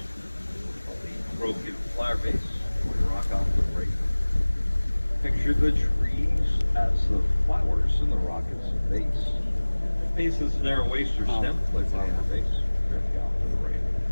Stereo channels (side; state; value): both; inverted; correlation -1.00